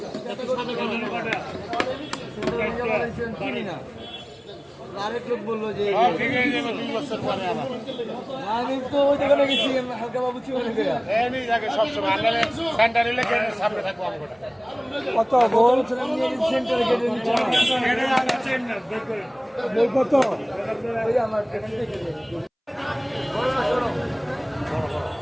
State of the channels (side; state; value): both; identical; correlation 1.00